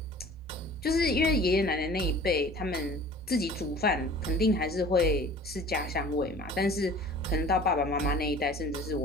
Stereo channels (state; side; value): normal; both; correlation 0.45